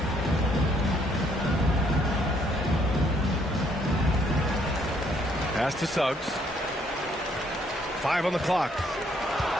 Pass to Suggs. 5 on the clock.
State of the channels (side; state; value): both; normal; correlation 0.68